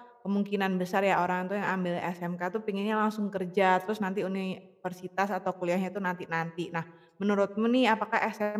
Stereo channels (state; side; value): identical; both; correlation 1.00